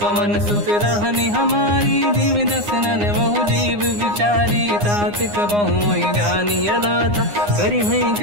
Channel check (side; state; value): left; late; 9.7 ms